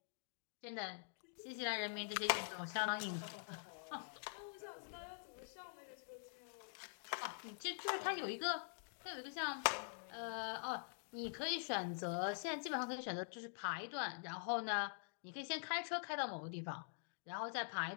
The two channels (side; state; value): right; silent; digital silence